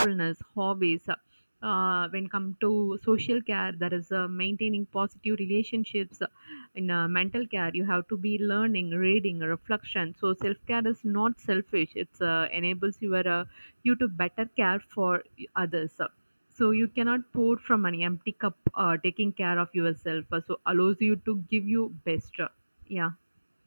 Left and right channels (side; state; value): both; inverted; correlation -1.00